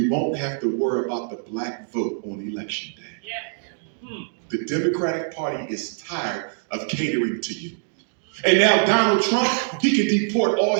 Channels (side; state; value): left; silent; 63 dB below the other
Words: won't have to worry about the black vote on election day. The Democratic Party is tired of catering to you. And now Donald Trump, he can deport all